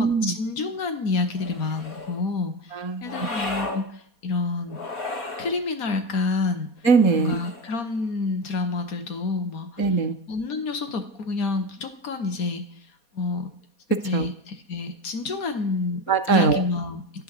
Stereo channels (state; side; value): late; right; 4.2 ms